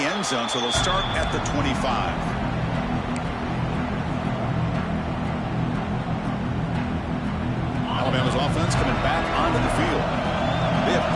end zone, so they'll start at the 25. Alabama's offense coming back onto the field. They have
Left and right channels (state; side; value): identical; both; correlation 1.00